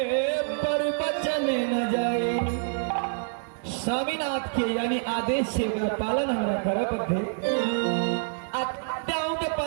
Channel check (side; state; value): left; silent; digital silence